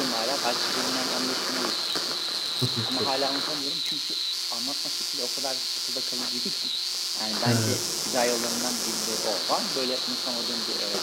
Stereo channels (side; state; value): both; identical; correlation 1.00